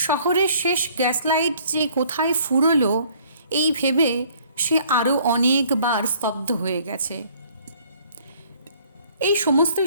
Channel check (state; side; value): inverted; both; correlation -0.58